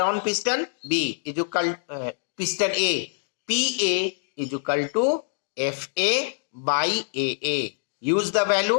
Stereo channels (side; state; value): right; silent; digital silence